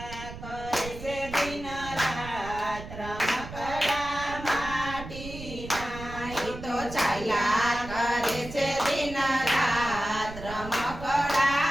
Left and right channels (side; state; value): right; noise; rumble, 12 dB below the sound